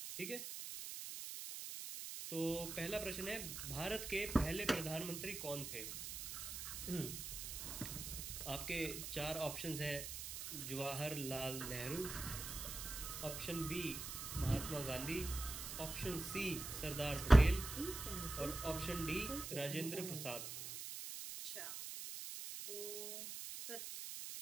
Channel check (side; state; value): right; noise; hiss, 6 dB below the sound